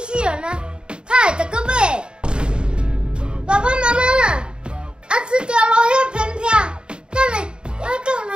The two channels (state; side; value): late; left; 0.051 ms